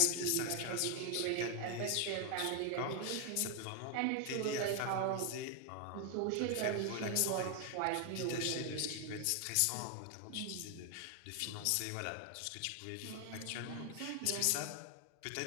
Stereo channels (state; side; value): different; both; correlation 0.00